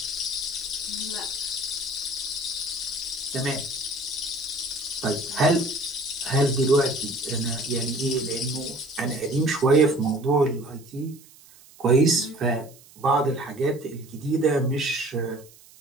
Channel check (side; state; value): right; noise; hiss, 24 dB below the sound